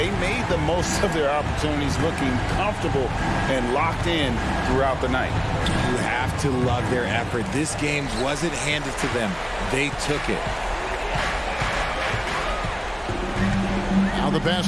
made the most of their opportunities, looking comfortable and locked in throughout the night. You have to love their effort. This game wasn't handed to them. They took it. Now the pass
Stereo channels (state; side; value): identical; both; correlation 1.00